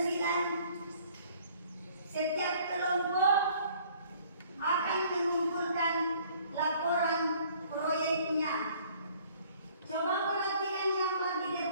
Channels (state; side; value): inverted; both; correlation -0.57